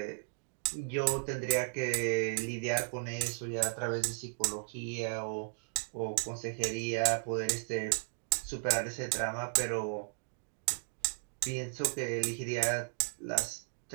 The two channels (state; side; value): silent; left; digital silence